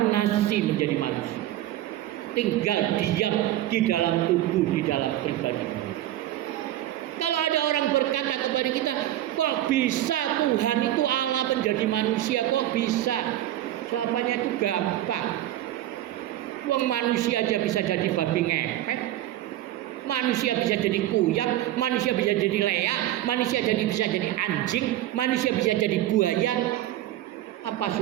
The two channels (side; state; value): left; quieter; 13.8 dB